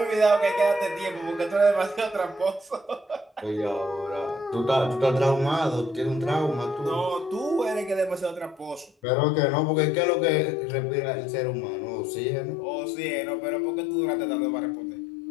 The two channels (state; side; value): drops out; right; at 8.9 s